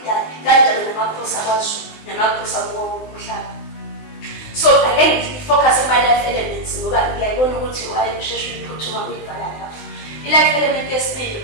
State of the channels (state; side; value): late; right; 19 ms